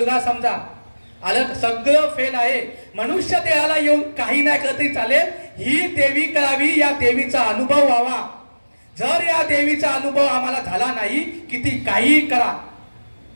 समजा, आलं, सगळं फेल आहे. मनुष्य देहाला येऊन काही नाही केलं तरी चालेल. ही देवी करावी, या देवीचा अनुभव व्हावा. जर या देवीचा अनुभव आम्हाला झाला नाही, किती काही करा.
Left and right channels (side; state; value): both; inverted; correlation -1.00